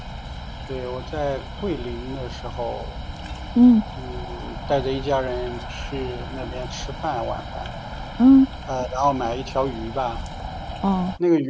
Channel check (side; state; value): both; identical; correlation 1.00